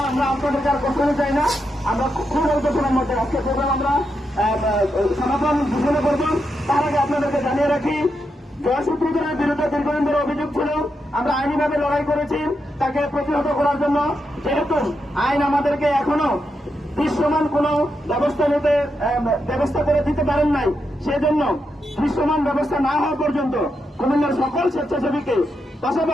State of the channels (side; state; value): both; normal; correlation 0.84